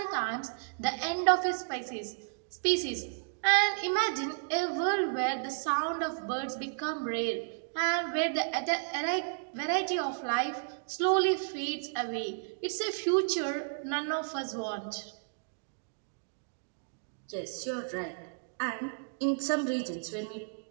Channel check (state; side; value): silent; left; digital silence